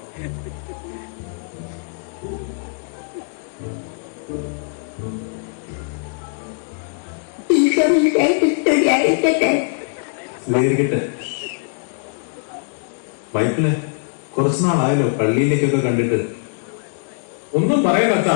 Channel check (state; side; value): silent; right; digital silence